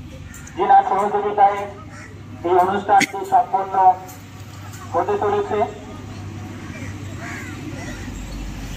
যিনার সহযোগিতায় এই অনুষ্ঠানটি সম্পন্ন হতে চলেছে।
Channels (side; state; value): both; identical; correlation 1.00